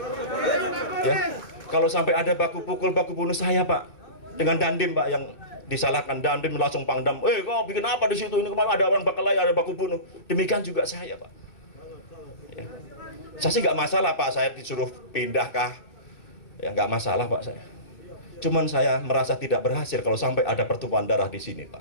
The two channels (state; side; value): late; right; 2.6 ms